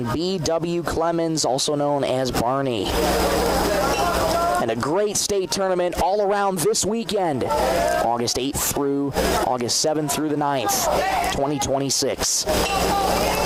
B.W. Clemens, also known as Barney. And a great state tournament all around this weekend. August 8th through August 7th through the 9th, 2026.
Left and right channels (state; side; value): identical; both; correlation 1.00